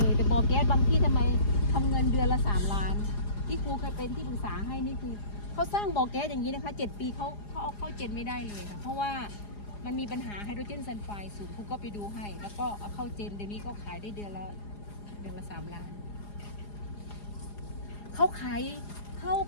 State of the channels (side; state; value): right; late; 4.9 ms